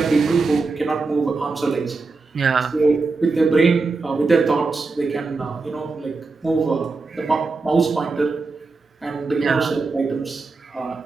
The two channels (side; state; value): left; quieter; 3.9 dB